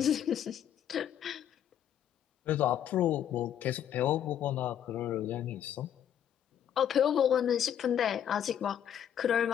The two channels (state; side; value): quieter; right; 9.8 dB